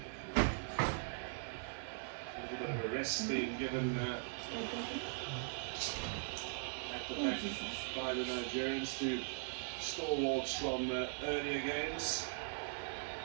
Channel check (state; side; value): silent; left; 51 dB below the other